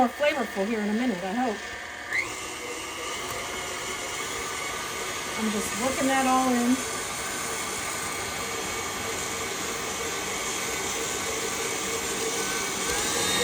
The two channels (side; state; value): both; identical; correlation 1.00